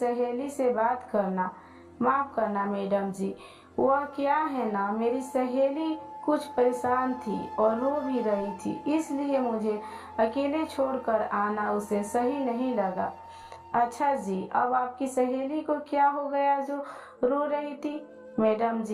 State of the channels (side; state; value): both; identical; correlation 1.00